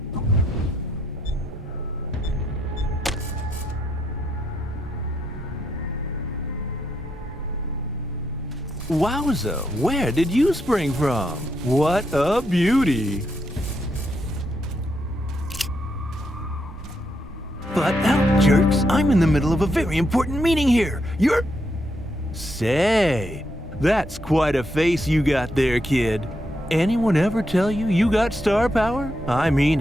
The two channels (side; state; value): both; normal; correlation 0.79